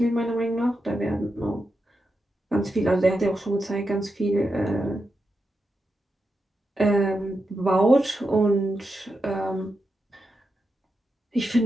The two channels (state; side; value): normal; both; correlation 0.87